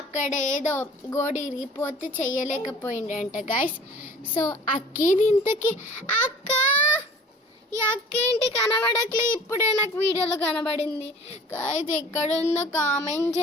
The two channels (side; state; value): both; normal; correlation 0.47